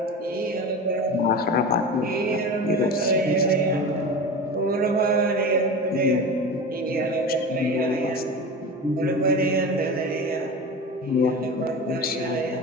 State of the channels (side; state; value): both; normal; correlation 0.29